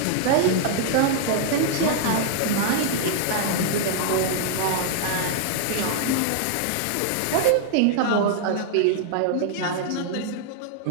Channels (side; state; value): both; different; correlation -0.01